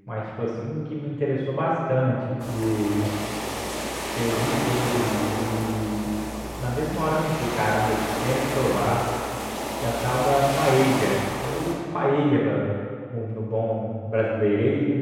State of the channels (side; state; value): both; identical; correlation 1.00